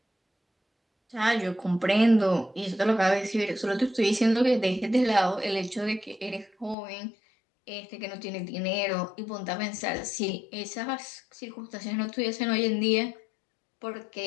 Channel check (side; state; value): right; drops out; at 6.8 s